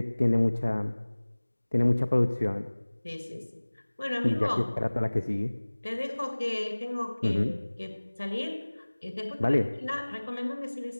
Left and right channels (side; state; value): both; inverted; correlation -1.00